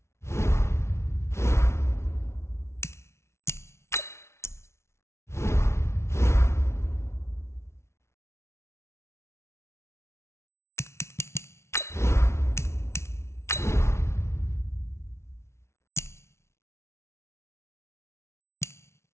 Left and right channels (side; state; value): right; late; 0.13 ms